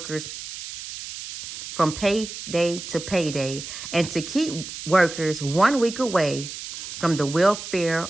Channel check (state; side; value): noise; right; hiss, 10 dB below the sound